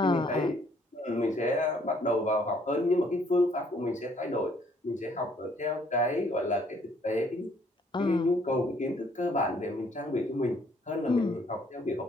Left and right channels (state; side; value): normal; both; correlation 0.64